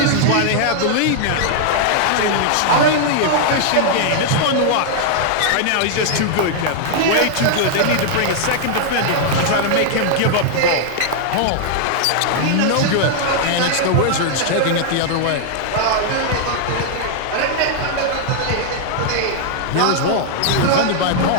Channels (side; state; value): both; different; correlation 0.00